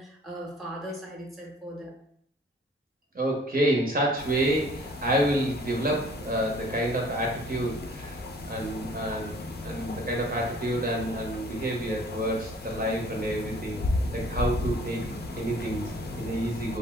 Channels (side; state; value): both; normal; correlation 0.53